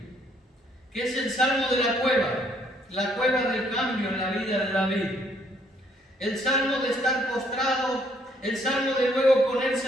que es el Salmo de la cueva del cambio en la vida de David, el Salmo de estar postrado, el Salmo de luego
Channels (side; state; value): both; normal; correlation 0.66